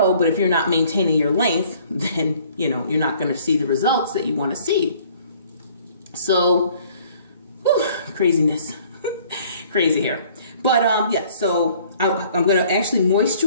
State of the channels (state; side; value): inverted; both; correlation -0.57